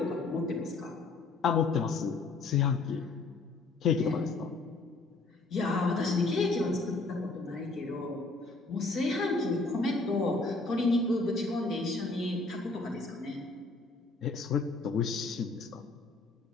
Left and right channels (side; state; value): right; quieter; 3.5 dB